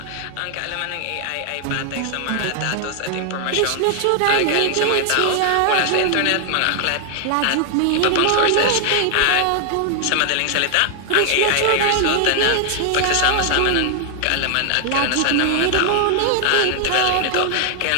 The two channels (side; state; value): both; different; correlation 0.00